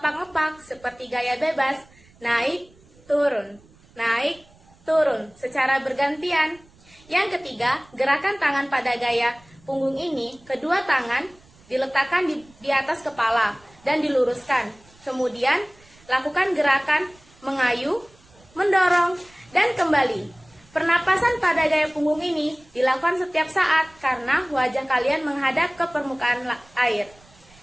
seperti gaya bebas, naik, turun, secara bergantian. Yang ketiga, gerakan tangan pada gaya punggung ini, kedua tangan diletakkan di atas kepala dan diluruskan. Kemudian, lakukan gerakan mengayuh, mendorong, dan kembali. Pernapasan pada gaya punggung ini dilakukan setiap saat karena wajah kalian menghadap ke permukaan air.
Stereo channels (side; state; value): right; noise; rumble, 28 dB below the sound